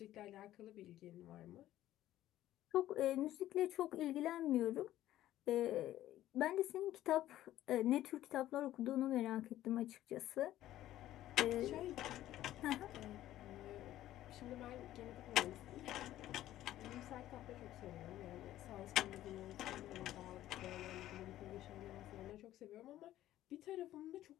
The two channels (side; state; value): right; quieter; 13.7 dB